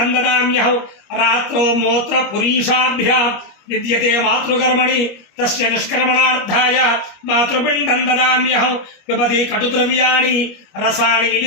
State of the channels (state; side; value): late; right; 25 ms